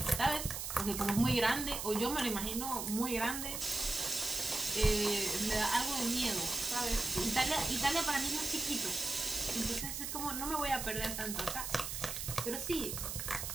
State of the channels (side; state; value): right; noise; hiss, 4 dB below the sound